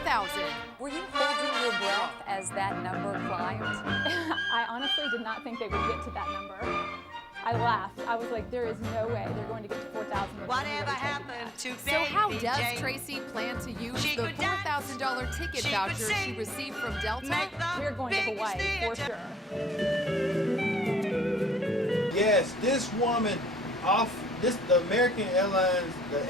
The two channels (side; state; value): both; normal; correlation 0.74